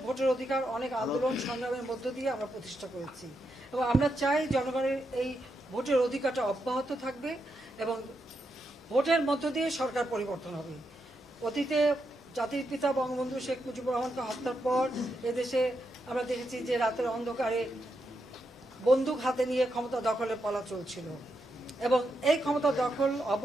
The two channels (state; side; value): normal; both; correlation 0.83